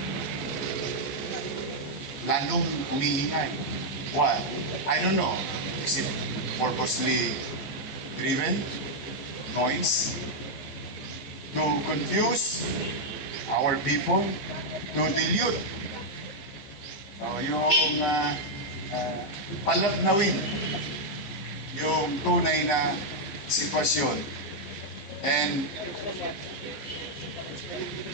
Lalong umiingay. Why? I don't know. Is it purposely driven? Noise? To confuse our people? To dilute yung palabnawin yung tunay na sitwasyon. And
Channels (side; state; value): right; late; 15 ms